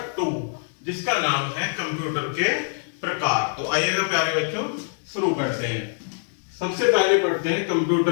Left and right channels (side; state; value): right; silent; digital silence